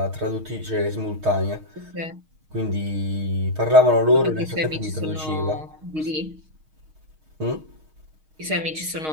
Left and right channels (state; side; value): late; left; 6.4 ms